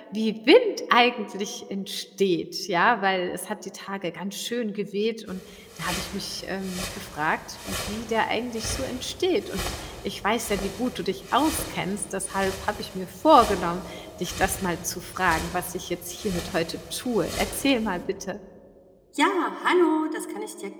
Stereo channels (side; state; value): both; identical; correlation 1.00